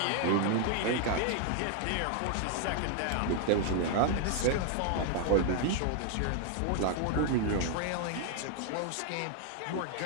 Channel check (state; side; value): different; both; correlation 0.00